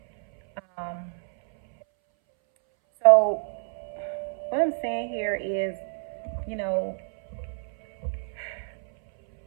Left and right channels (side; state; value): left; silent; 60 dB below the other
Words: Um, so what I'm saying here is, you know,